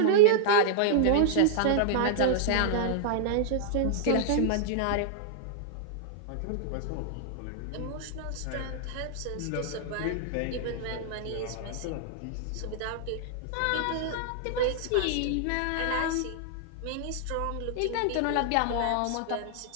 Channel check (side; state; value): both; different; correlation -0.01